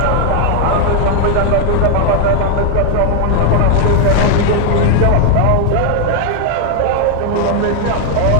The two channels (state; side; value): different; both; correlation 0.00